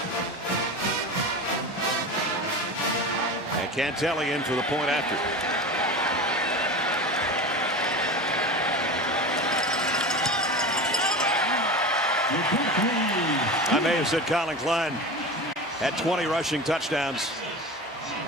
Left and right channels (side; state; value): both; normal; correlation 0.29